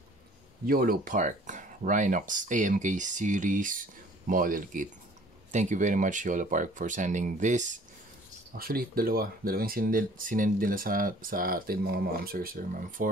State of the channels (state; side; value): normal; both; correlation 0.53